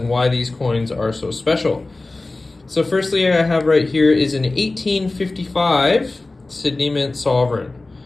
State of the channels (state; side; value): quieter; right; 3.1 dB